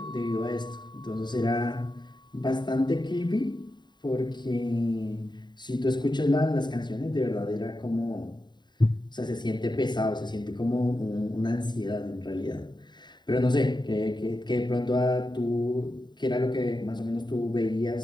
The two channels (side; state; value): right; late; 0.21 ms